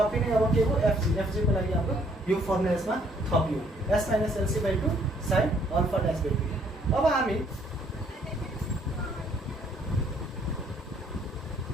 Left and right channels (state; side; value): normal; both; correlation 0.65